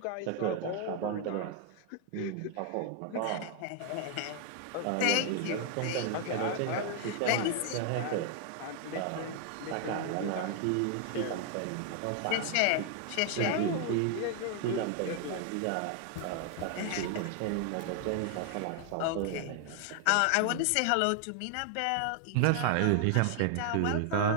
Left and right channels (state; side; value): different; both; correlation 0.00